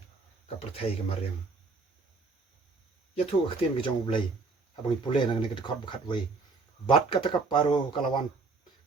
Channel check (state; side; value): quieter; left; 4.0 dB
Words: ka perthai ke mariam ya thu aktin ke jong blai abang pule nang ne ke khot khat wei bat kata kaparo